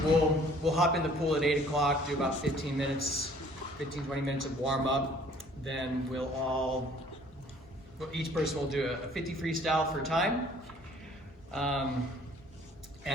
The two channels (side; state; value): both; normal; correlation 0.56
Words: we'll hop in the pool at 8 o'clock, do about 15, 20 minutes of warm up. Then each person will do a 50 freestyle for time.